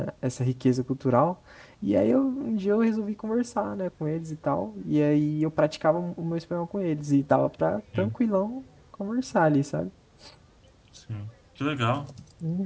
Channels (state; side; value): identical; both; correlation 1.00